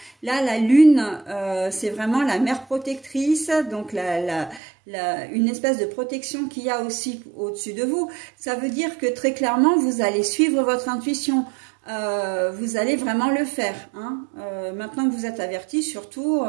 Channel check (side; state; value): left; drops out; at 4.6 s